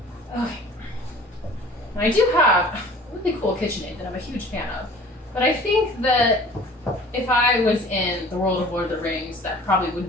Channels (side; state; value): both; normal; correlation 0.46